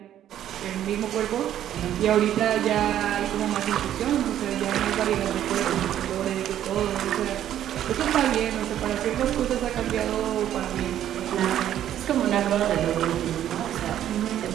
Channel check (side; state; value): left; quieter; 11.3 dB